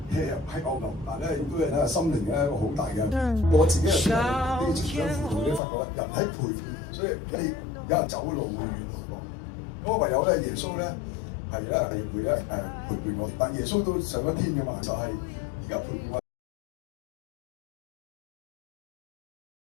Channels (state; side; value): drops out; right; at 5.6 s